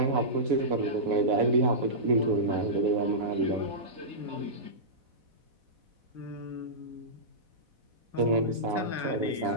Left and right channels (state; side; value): late; left; 4.1 ms